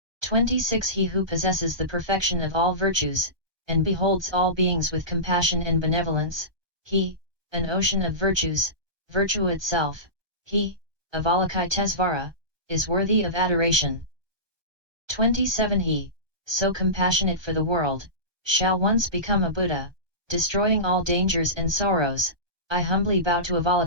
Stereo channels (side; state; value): left; late; 1.2 ms